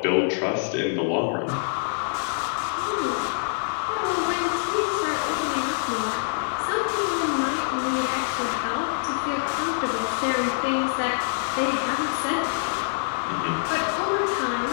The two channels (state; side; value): silent; right; digital silence